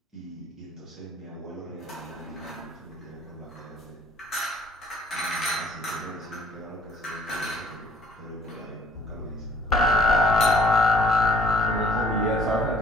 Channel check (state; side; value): normal; both; correlation 0.58